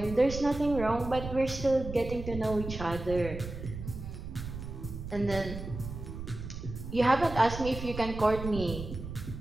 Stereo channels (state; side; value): noise; right; rumble, 9 dB below the sound